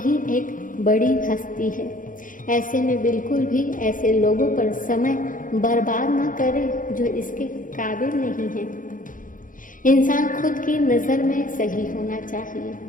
एक बड़ी हस्ती है। ऐसे में बिल्कुल भी ऐसे लोगों पर समय बर्बाद ना करें जो इसके काबिल नहीं हैं। इंसान खुद की नज़र में सही होना चाहिए,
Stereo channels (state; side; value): late; right; 0.39 ms